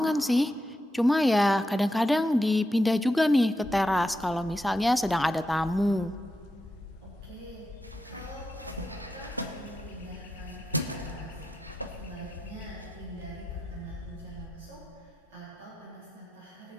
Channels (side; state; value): both; normal; correlation 0.87